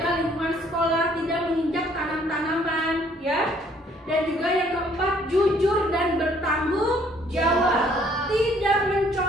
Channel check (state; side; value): normal; both; correlation 0.62